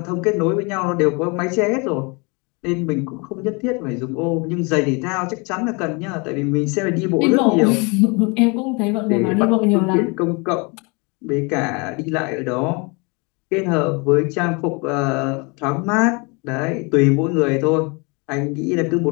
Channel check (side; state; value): right; quieter; 30.1 dB